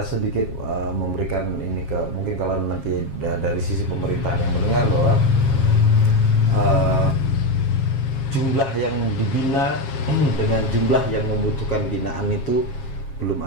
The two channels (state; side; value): late; right; 7.4 ms